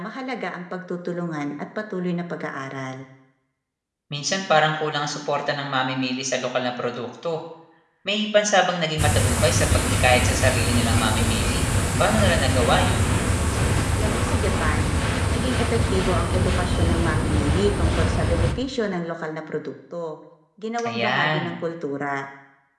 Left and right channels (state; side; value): identical; both; correlation 1.00